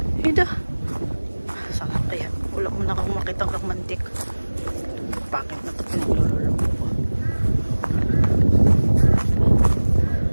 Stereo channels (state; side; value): inverted; both; correlation -1.00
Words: Ito. Saan kaya? Wala mo na akong makitang romantic. Bakit na ito pinaglulolo ko?